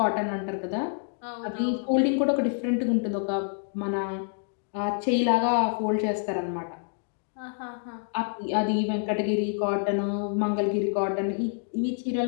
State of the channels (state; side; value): silent; right; 56 dB below the other